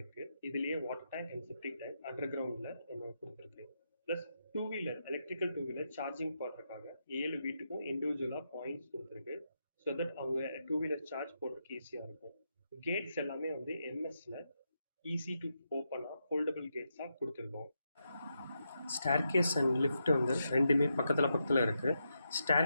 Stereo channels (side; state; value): both; inverted; correlation -0.84